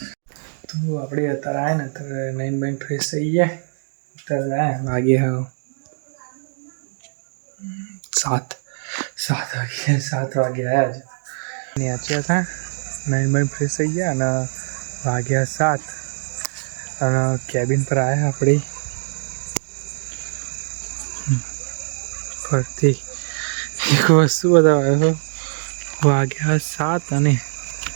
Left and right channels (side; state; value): left; silent; digital silence